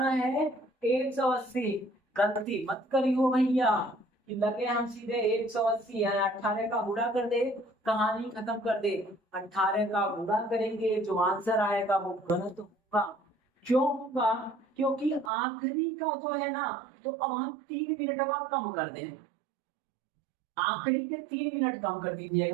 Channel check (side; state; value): left; drops out; at 15.3 s